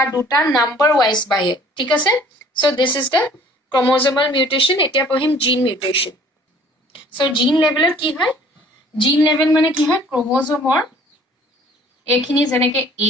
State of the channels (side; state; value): both; normal; correlation 0.54